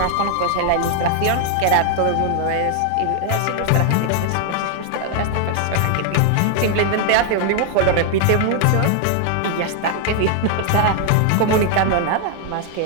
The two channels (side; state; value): both; different; correlation 0.00